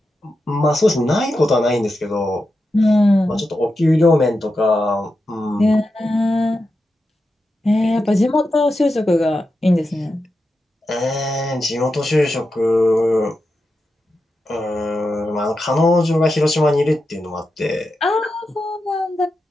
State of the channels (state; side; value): normal; both; correlation 0.89